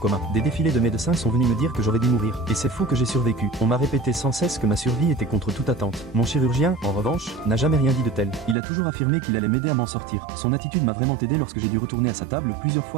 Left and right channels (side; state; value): left; drops out; at 8.6 s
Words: Des défilés de médecins sont venus me dire que j'aurais dû mourir. Et c'est fou que j'ai survécu. On m'a répété sans cesse que ma survie était contre toute attente. Mon chirurgien, en revanche, n'a jamais rien dit de tel. Il a toujours affirmé qu'il allait m'aider à m'en sortir. Son attitude m'a vraiment aidé lorsque j'ai dû retourner à sa table plusieurs